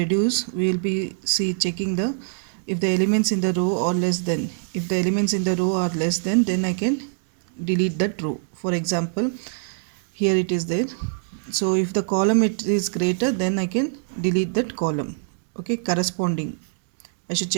we will be checking the if the elements in the row are less than, if the elements in the row are less than, then I can delete that row. For example, here it is there. So if the column it is greater, then I can delete that column. Okay, corresponding, I should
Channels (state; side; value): silent; left; digital silence